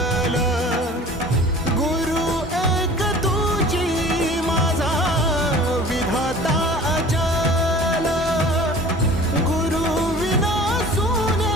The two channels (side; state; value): both; normal; correlation 0.44